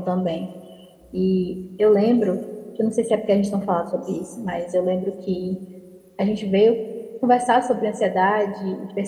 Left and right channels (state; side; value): identical; both; correlation 1.00